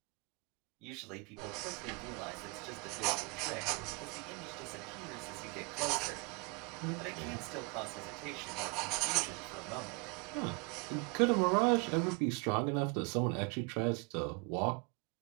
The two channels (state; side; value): quieter; left; 30.2 dB